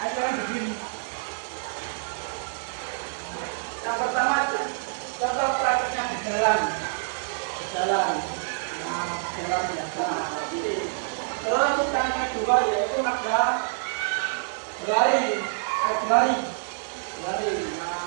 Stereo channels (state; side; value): silent; left; 60 dB below the other